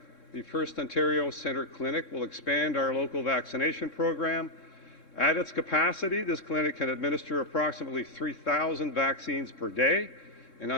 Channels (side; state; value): right; late; 3.7 ms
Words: the First Ontario Centre Clinic will expand our local vaccination program. At its capacity, this clinic can administer approximately 3,000 vaccines per day, and